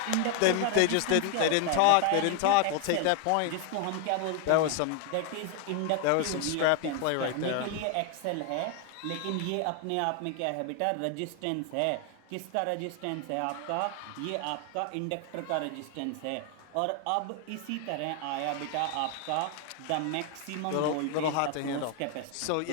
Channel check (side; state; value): both; different; correlation 0.00